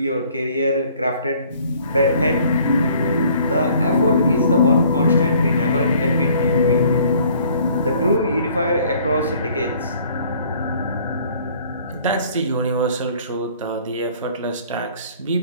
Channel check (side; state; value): both; inverted; correlation -0.57